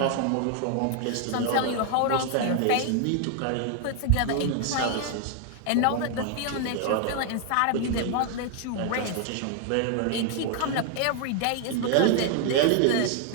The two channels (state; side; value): different; both; correlation 0.00